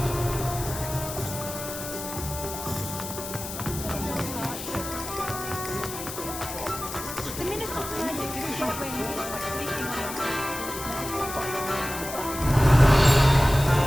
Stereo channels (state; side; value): noise; left; hiss, 9 dB below the sound